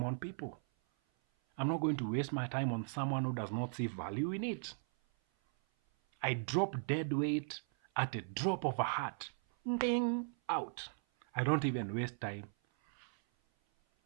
on people. I'm not going to waste my time on someone who does not see value in it. I drop dead weight at a drop of a hat. Ding, out. I don't even waste time.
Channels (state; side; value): silent; left; 53 dB below the other